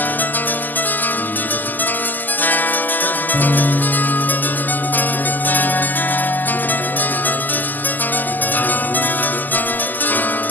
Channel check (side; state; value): right; late; 0.086 ms